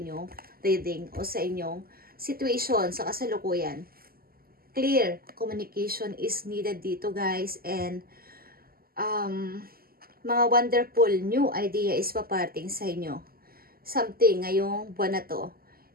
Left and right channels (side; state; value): left; late; 0.43 ms